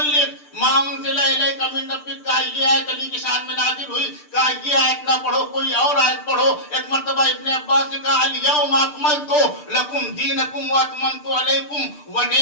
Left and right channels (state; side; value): late; right; 6.7 ms